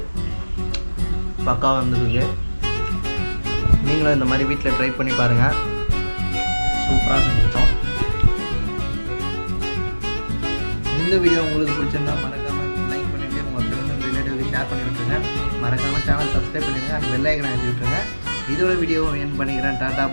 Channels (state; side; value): inverted; both; correlation -1.00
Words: பக்கா வந்துருக்கு. நீங்களும் இந்த மாதிரி வீட்டில் ட்ரை பண்ணி பாருங்கள். சூப்பராக செஞ்சுட்டோம். இந்த வீடியோ உங்களுக்கு பிடிச்சிருந்தா மறக்காமல் லைக் பண்ணிவிட்டு உங்கள் ஃப்ரெண்ட்ஸ் அண்ட் ரிலேட்டிவ்க்கு ஷேர் பண்ணி விட்டுருங்க. மறக்காமல் சேனல் சப்ஸ்கிரைப் பண்ணிடுங்க. அந்த பெல் ஐக்கனை அழுத்தி விட்டுருங்க. இதோட வீடியோவை என் பண்ணிக்கிறேன். டாடா